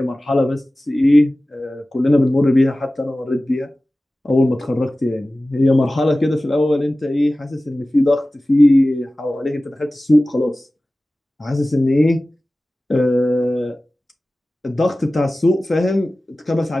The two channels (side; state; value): both; normal; correlation 0.96